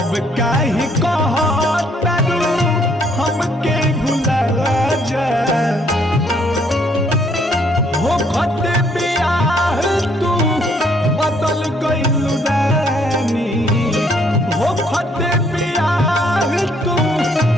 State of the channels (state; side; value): normal; both; correlation 0.67